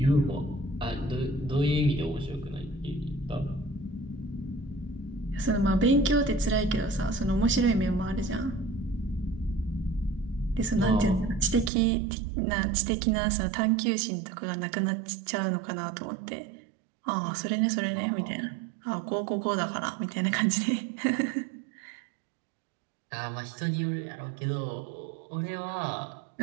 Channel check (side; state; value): left; drops out; at 11.7 s